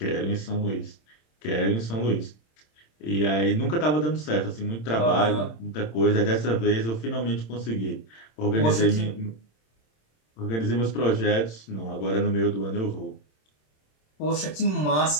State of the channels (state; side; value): late; right; 26 ms